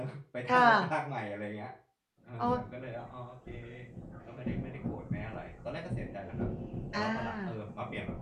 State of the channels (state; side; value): identical; both; correlation 1.00